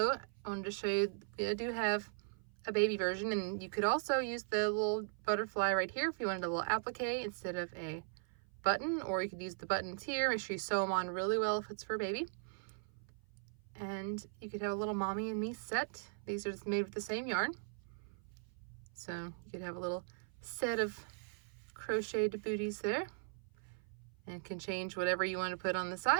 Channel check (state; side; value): silent; left; 52 dB below the other